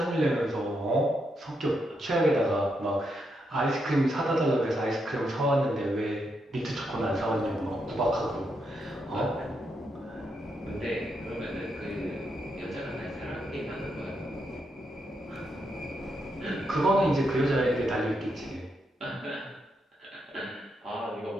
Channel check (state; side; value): normal; both; correlation 0.81